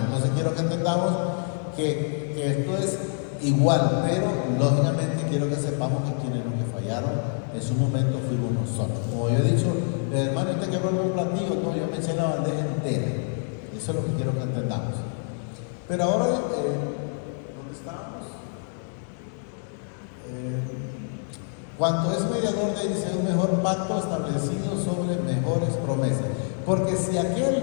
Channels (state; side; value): silent; right; 61 dB below the other